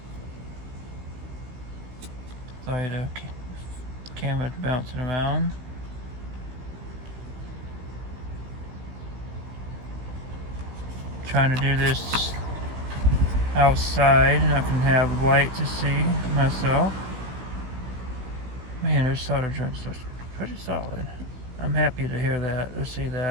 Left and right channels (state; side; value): late; left; 16 ms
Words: Sorry, the camera's bouncing around. Trying to do this outside and I can have light to see myself. Man, those solder joints look pretty solid. I'm happy to hear that, or see